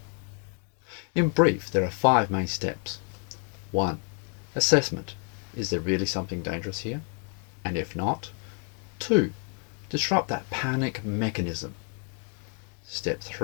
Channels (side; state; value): right; quieter; 39.8 dB